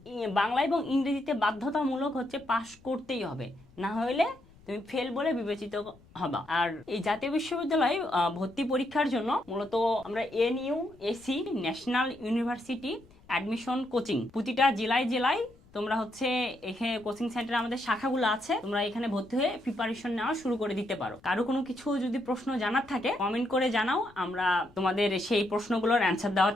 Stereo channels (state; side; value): noise; left; rumble, 27 dB below the sound